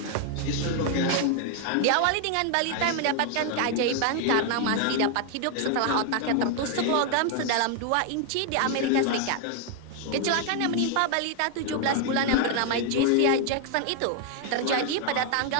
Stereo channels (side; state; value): both; different; correlation 0.00